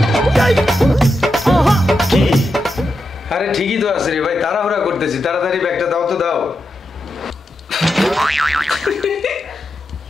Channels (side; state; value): both; normal; correlation 0.87